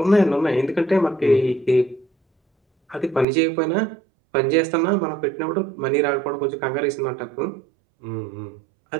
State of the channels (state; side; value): drops out; left; at 3.2 s